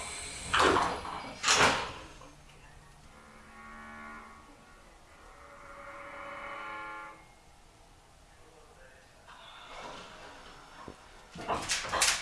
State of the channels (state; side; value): identical; both; correlation 1.00